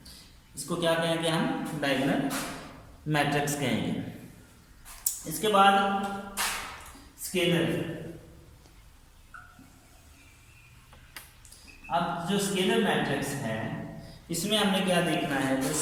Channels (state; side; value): identical; both; correlation 1.00